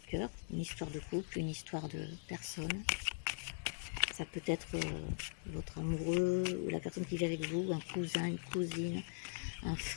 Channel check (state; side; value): silent; right; digital silence